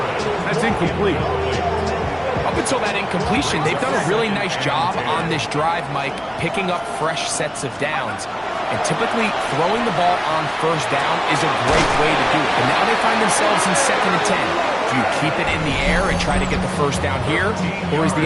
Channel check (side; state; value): both; identical; correlation 1.00